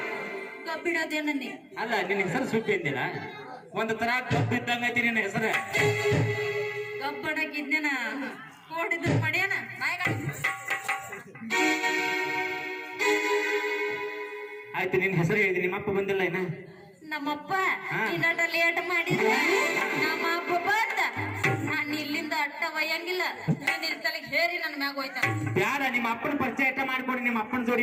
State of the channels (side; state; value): both; identical; correlation 1.00